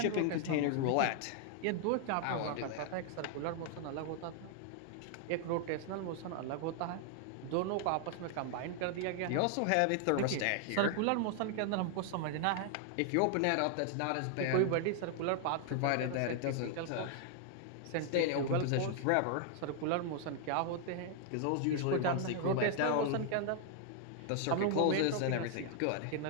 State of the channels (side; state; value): both; different; correlation 0.00